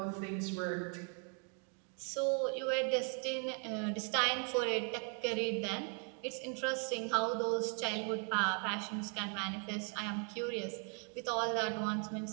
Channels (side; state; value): left; quieter; 39.1 dB